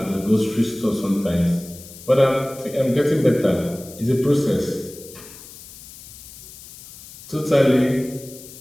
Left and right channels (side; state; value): left; noise; hiss, 17 dB below the sound